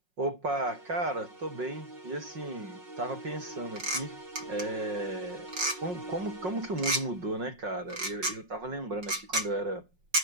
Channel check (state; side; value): late; left; 5.5 ms